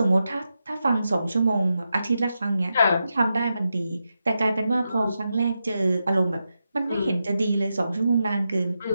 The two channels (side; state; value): both; inverted; correlation -0.88